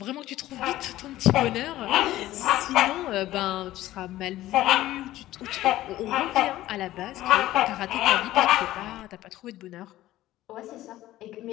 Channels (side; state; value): right; quieter; 15.2 dB